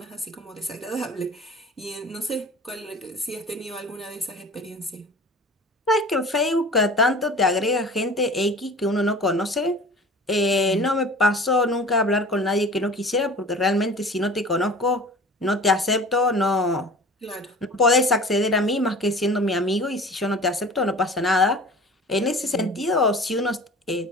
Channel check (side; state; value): both; normal; correlation 0.41